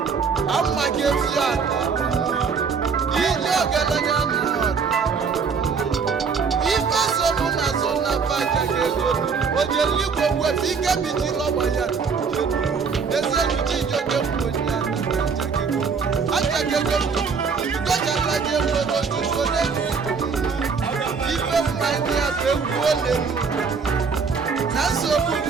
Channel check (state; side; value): quieter; left; 5.6 dB